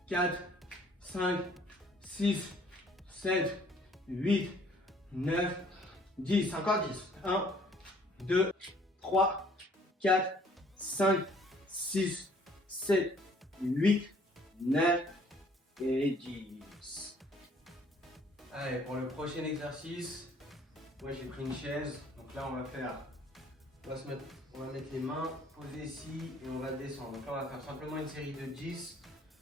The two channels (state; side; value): normal; both; correlation 0.59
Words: 4, 5, 6, 7, 8, 9, 10. Encore 10. 1, 2, 3, 4, 5, 6, 7, 8, 9 et 10. Allez, pour le prochain exercice, moi j'ai pris une chaise. Donc là, on va mettre les mains posées ici et on va descendre. Donc là, on va faire simplement une série de 10.